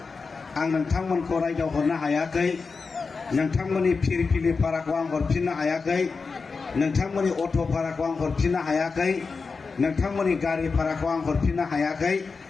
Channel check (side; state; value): right; quieter; 4.6 dB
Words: आं नोंथांमोनखौ रायदावहरनो हायाखै। नोंथांमोननि फिरफिलि भाराखौ आं हरफिननो हायाखै, नोंथांमोननि अट' भाराखौ आं हरफिननो हायाखै, नोंथांमोननि गारि भाराखौ आं हरफिननो हायाखै।